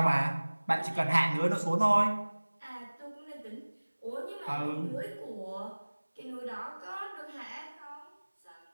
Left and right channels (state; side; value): inverted; both; correlation -1.00